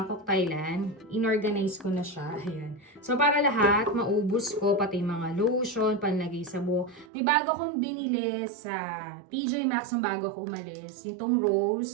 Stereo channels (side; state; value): left; drops out; at 7.1 s